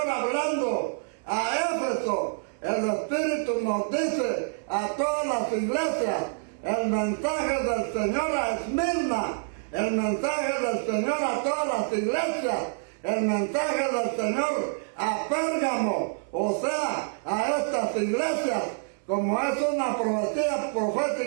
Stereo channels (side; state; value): left; silent; 60 dB below the other